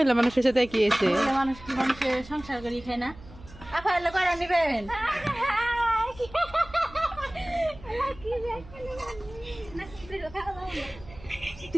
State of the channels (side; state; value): right; noise; hum, 19 dB below the sound